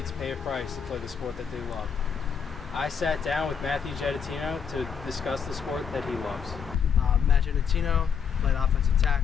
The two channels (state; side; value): quieter; right; 6.9 dB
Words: pay a price to play the sport that they love. I sat down with Matthew Gettitino to discuss the sport that he loves. Matt Gettitino, played offensive